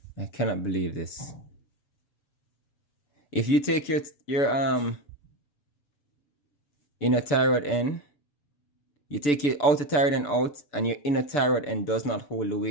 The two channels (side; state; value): right; late; 6.9 ms